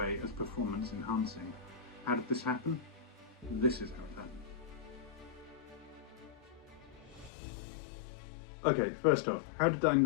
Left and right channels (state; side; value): drops out; right; at 7.3 s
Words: as performance enhancing. How did this happen? This is how it happened. Okay, first off, how did I